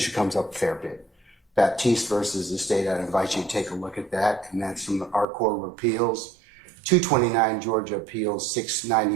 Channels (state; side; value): drops out; left; at 5.2 s